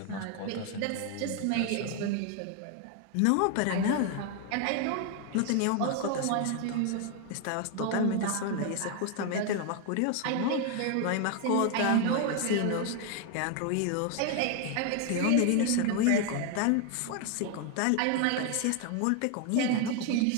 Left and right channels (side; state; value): both; different; correlation 0.01